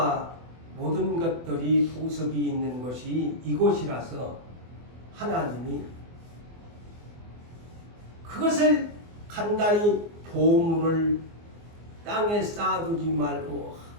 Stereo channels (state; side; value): late; left; 24 ms